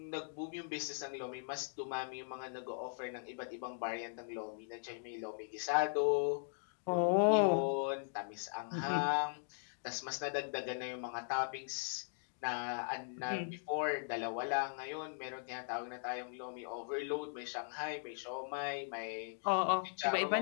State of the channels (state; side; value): silent; right; digital silence